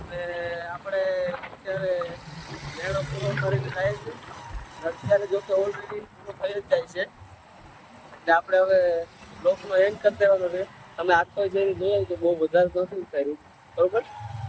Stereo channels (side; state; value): both; identical; correlation 1.00